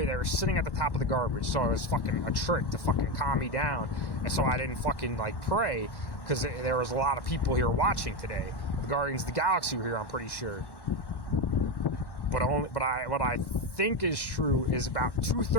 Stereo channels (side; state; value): right; late; 1.1 ms